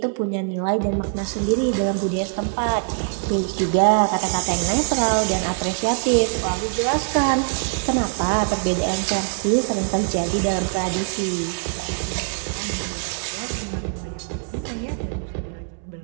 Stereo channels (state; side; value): silent; left; 64 dB below the other